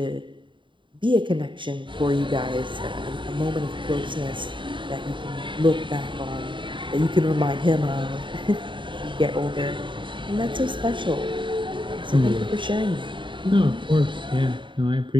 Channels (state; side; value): late; left; 0.24 ms